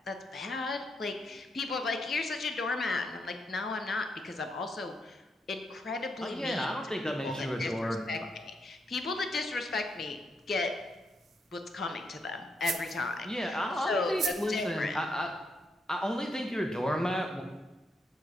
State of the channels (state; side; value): normal; both; correlation 0.79